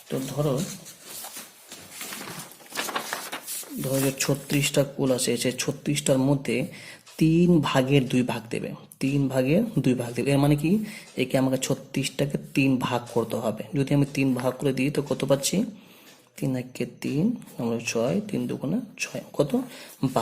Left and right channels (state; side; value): identical; both; correlation 1.00